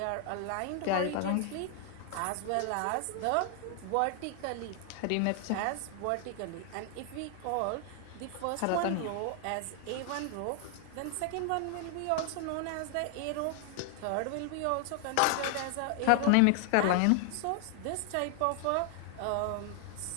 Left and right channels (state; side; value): different; both; correlation 0.00